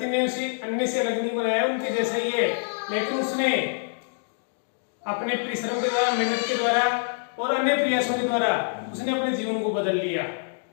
ने उसे अन्य से अलग नहीं बनाया, उनके जैसा ही है, लेकिन उसने अपने परिश्रम के द्वारा, मेहनत के द्वारा और अन्य प्रयासों के द्वारा उसने अपने जीवन को बदल लिया।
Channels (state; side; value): silent; right; digital silence